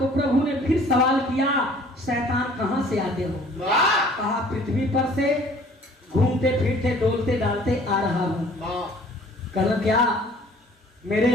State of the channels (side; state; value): both; normal; correlation 0.53